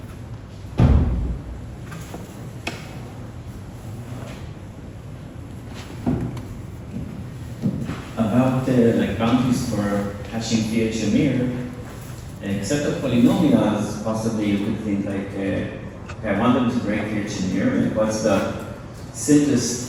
About like boundaries for hashing PHMir, except of polynomials, possibly you could think like, okay, I want them to break PHMir, and what's the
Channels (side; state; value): both; identical; correlation 1.00